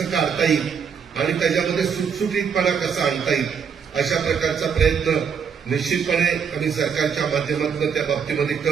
काढता येईल आणि त्याच्यामध्ये सुटसुटीतपणा कसा आणता येईल, अशा प्रकारचा प्रयत्न निश्चितपणे आम्ही सरकारच्या माध्यमातून त्या बाबतीमध्ये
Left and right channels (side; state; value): left; quieter; 6.7 dB